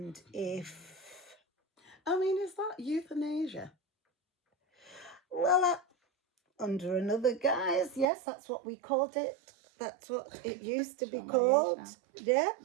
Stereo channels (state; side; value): drops out; left; at 8.1 s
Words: if... I mean, is that euthanasia? Well, under another guise, yes, that's what we called it. That's what it used to be called. Yeah,